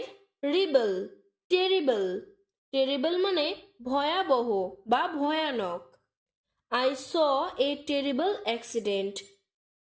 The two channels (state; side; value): identical; both; correlation 1.00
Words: রিবল, টেরিবল। টেরিবল মানে ভয়াবহ বা ভয়ানক। I saw a terrible accident.